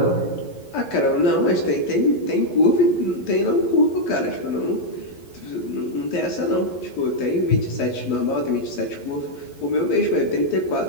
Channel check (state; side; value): late; right; 11 ms